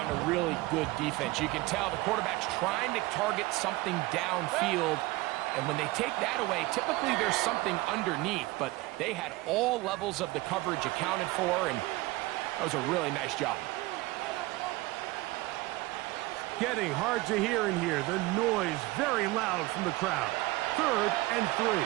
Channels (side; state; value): left; quieter; 20.5 dB